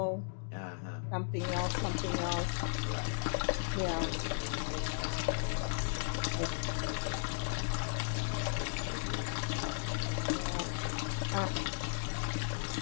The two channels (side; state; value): right; silent; digital silence